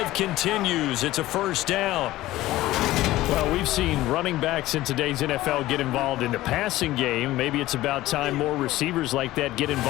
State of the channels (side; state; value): right; quieter; 16.4 dB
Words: continues. It's a first down. Well, we've seen running backs in today's NFL get involved in the passing game. Maybe it's about time more receivers like that get